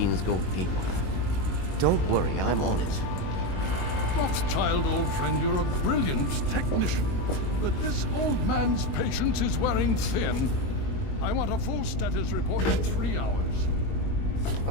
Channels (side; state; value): right; late; 22 ms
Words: go haywire. Don't worry, I'm... Rothschild, old friend, you're a brilliant technician. But this old man's patience is wearing thin. I want a full status report in 3 hours.